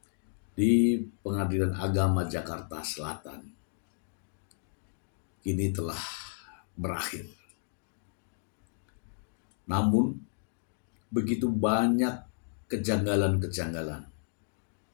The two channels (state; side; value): silent; right; digital silence